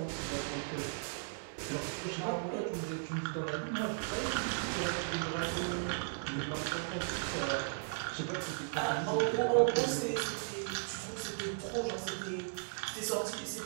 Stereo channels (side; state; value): left; silent; 54 dB below the other